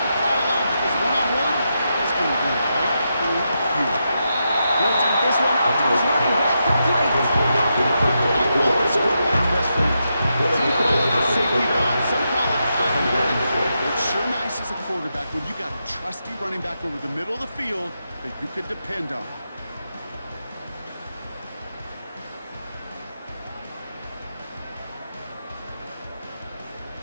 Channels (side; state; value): both; inverted; correlation -0.85